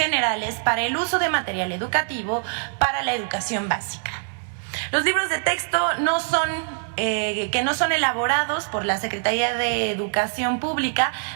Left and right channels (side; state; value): left; silent; digital silence